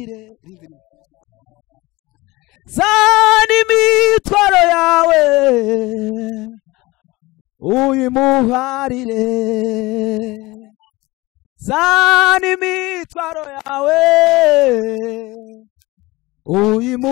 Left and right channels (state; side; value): quieter; right; 21.1 dB